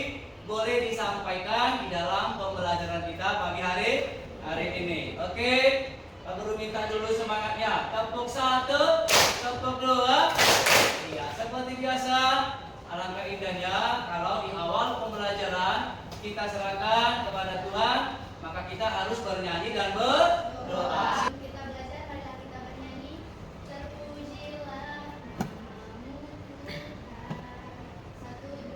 boleh disampaikan di dalam pembelajaran kita pagi hari ini. Oke, Pak Guru minta dulu semangatnya. Tepuk satu, tepuk dua. Iya, seperti biasa. Alangkah indahnya kalau di awal pembelajaran kita serahkan kepada Tuhan, maka kita harus bernyanyi dan berdoa. Kita belajar, marilah kita bernyanyi. Terpujilah namamu Tuhan. 1,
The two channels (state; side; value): identical; both; correlation 1.00